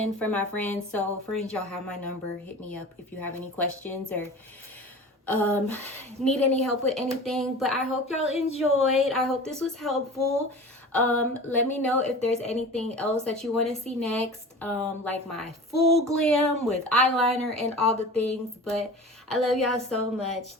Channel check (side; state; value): both; normal; correlation 0.37